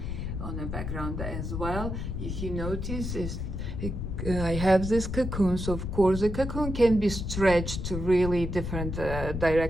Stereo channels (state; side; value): noise; left; rumble, 4 dB below the sound